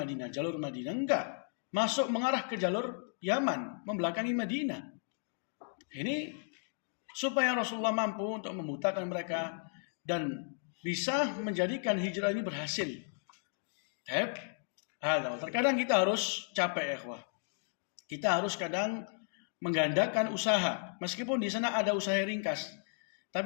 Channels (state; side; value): silent; right; digital silence